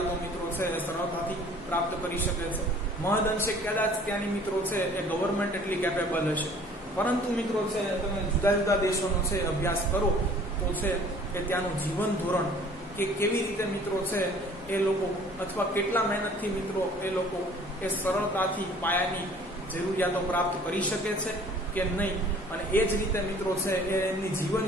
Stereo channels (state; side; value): normal; both; correlation 0.52